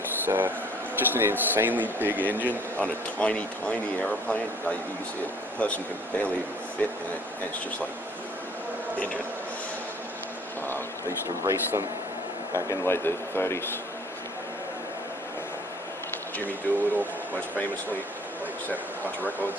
just an insanely big engine on a tiny, tiny airplane. Like, you can see a person can barely even fit in it, and it's just like in it. They used to race them back in like the 30s. Jimmy Doolittle, most famously, like set a bunch of records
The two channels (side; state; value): both; normal; correlation 0.56